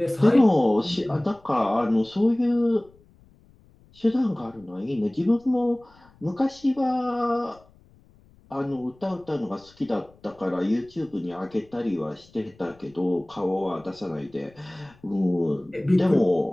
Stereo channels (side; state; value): left; noise; rumble, 28 dB below the sound